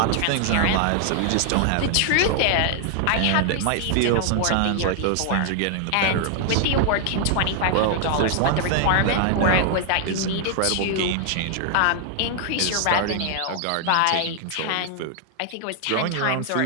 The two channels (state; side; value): different; both; correlation 0.00